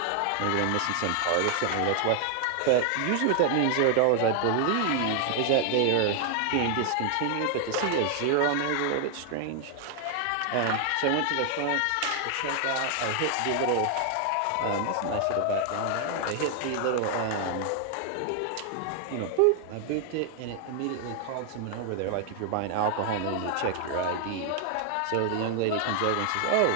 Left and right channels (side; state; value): both; different; correlation 0.00